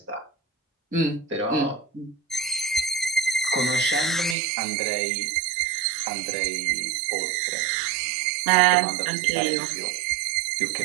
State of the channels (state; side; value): drops out; left; at 4.4 s